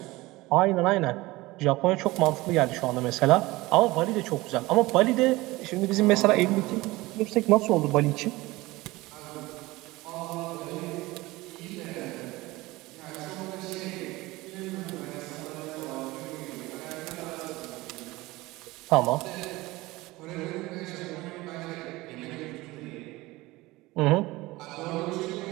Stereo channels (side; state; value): left; quieter; 20.2 dB